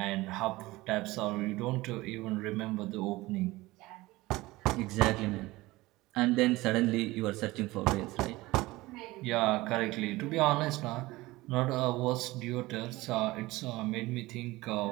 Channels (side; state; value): left; quieter; 19.7 dB